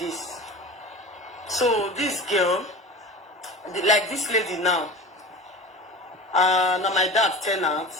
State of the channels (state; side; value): normal; both; correlation 0.34